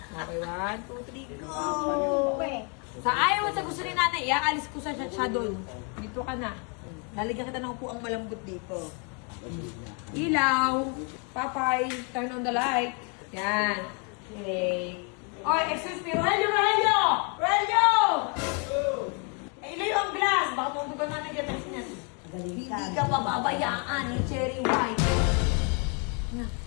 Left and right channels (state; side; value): quieter; right; 36.6 dB